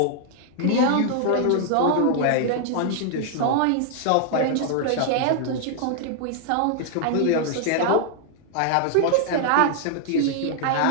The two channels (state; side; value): different; both; correlation 0.00